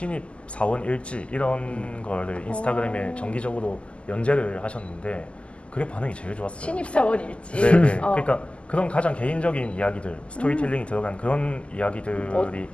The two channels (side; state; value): right; late; 0.056 ms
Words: 사원 일지 이런 거를 인스타그램에 정기적으로 연재를 하셨는데 그게 반응이 제일 좋았어요. 신입사원 일지? 네네. 그러니까 그런 가장 개인적인 이야기들, 스토리텔링이 들어간 그런 이야기들이